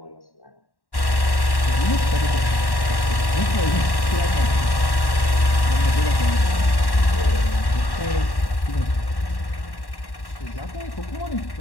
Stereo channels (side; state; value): right; late; 1.1 ms